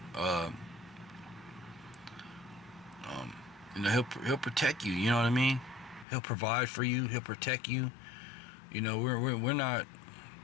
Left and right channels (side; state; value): right; drops out; at 6.1 s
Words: he'll protect you. You know what I mean? He'll provide for you. He'll protect you. We're not